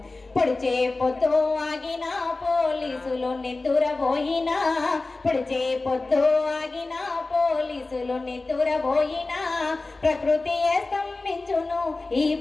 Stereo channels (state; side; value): quieter; right; 3.3 dB